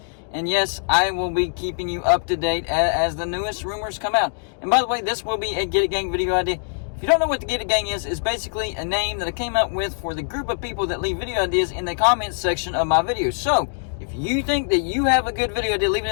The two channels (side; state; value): right; silent; digital silence